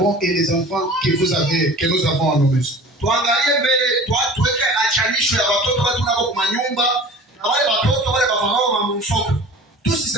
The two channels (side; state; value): both; normal; correlation 0.42